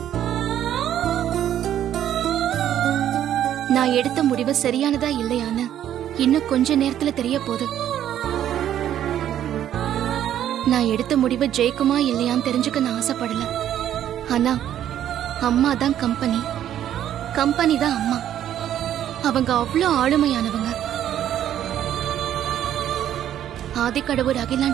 நான் எடுத்த முடிவு சரியானதா இல்லையான்னு இன்னும் கொஞ்ச நேரத்துல தெரிய போகுது. நான் எடுத்த முடிவு ஜெயிக்குமா இல்லையான்னு தெரிஞ்சுக்க நான் ஆசைப்படல. ஆனா அம்மா தான் கம்பெனி, கம்பெனி தான் அம்மா. அவங்க அவ்வளோ ஆளுமையானவங்க. ஆதிக்கடவுர்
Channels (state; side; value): quieter; left; 11.0 dB